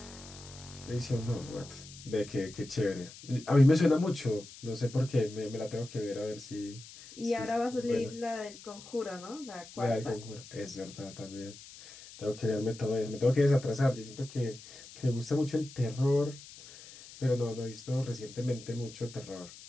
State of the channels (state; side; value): noise; left; hiss, 17 dB below the sound